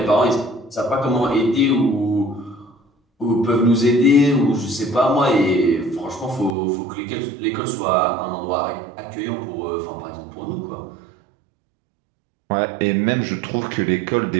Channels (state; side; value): drops out; left; at 6.6 s